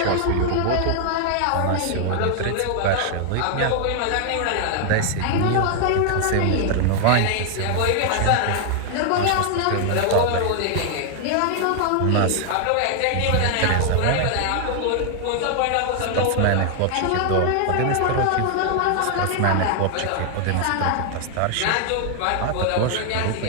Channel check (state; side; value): different; both; correlation 0.00